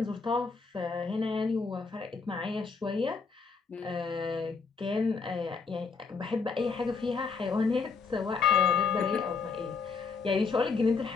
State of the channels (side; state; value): right; quieter; 4.9 dB